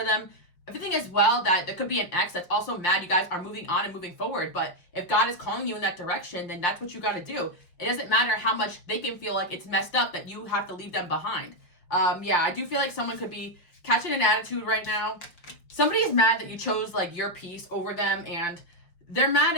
them. Everything as well, that there could be an ex that's also mad you guys are moving on and moving forward, but if God is calling you in that direction, then that's what you got to do. It doesn't matter how much they can feel like it's messed up that you have to leave them behind. I do feel like someone could be catching an attitude right now. Somebody is mad that you chose like your peace over them, and they're mad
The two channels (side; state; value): right; late; 5.6 ms